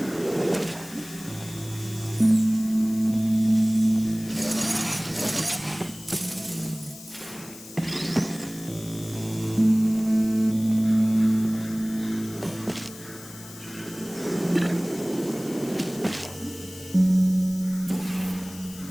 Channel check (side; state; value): left; noise; hiss, 17 dB below the sound